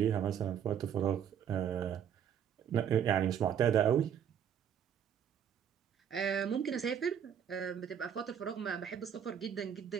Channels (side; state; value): left; quieter; 8.7 dB